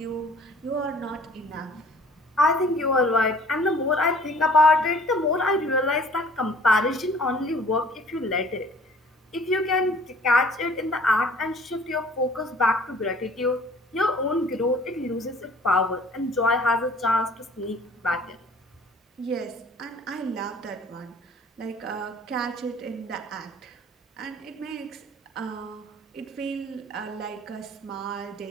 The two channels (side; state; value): both; normal; correlation 0.52